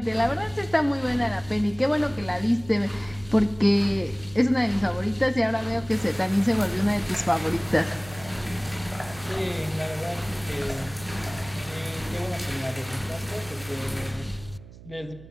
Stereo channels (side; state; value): right; noise; hum, 18 dB below the sound